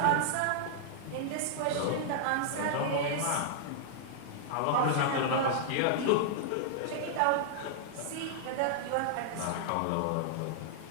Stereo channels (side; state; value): both; different; correlation -0.01